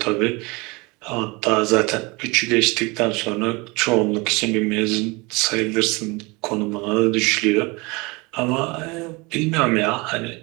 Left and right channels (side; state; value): left; quieter; 26.1 dB